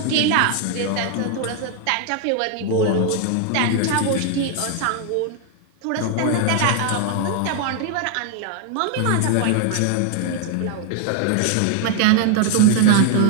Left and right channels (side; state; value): both; different; correlation 0.00